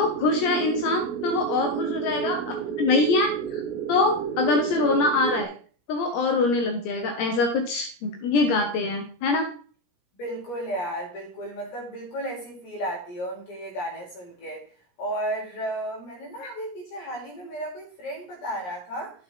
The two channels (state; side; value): late; right; 17 ms